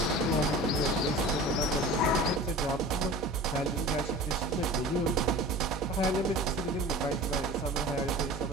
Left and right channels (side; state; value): both; normal; correlation 0.38